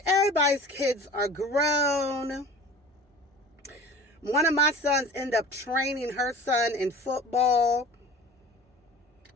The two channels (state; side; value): normal; both; correlation 0.41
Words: everybody's kids are grown. One of my sons ended up training her son in football.